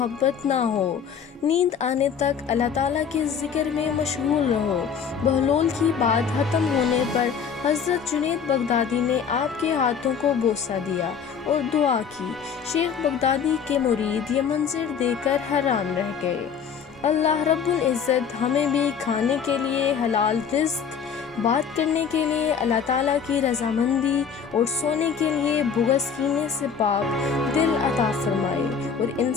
نہ ہو، نیند آنے تک اللہ تعالیٰ کے ذکر میں مشغول رہو۔ بہلول کی بات ختم ہونے پر حضرت جنید بغدادی نے آپ کے ہاتھوں کو بوسہ دیا اور دعا کی۔ شیخ بغدادی کے مرید یہ منظر دیکھ کر حیران رہ گئے۔ اللہ رب العزت ہمیں بھی کھانے کے لیے حلال رزق، بات کرنے کے لیے اللہ تعالیٰ کی رضامندی اور سونے کے لیے بغض، کینے سے پاک دل عطا فرمائے اور ان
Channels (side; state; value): right; quieter; 6.9 dB